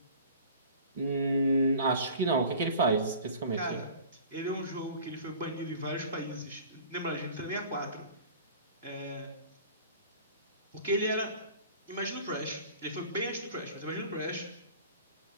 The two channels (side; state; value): both; inverted; correlation -0.43